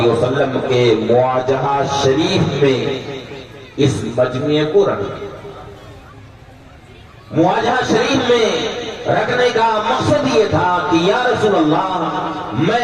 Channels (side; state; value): both; identical; correlation 1.00